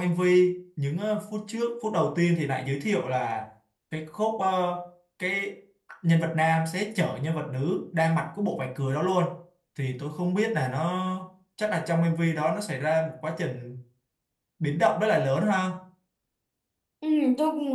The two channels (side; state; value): both; identical; correlation 1.00